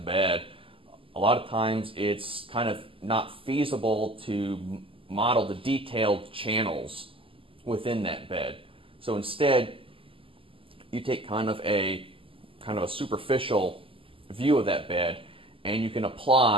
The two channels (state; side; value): late; left; 0.26 ms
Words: bed, a lot of times it's kind of not feasible to model the detailed channels within that bed. So instead, you take kind of a superficial view of that bed, and you can